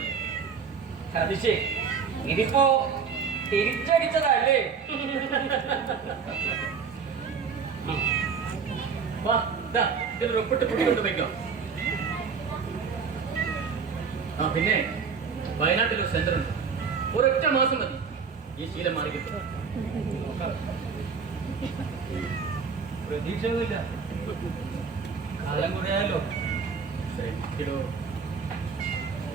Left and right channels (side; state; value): left; quieter; 5.9 dB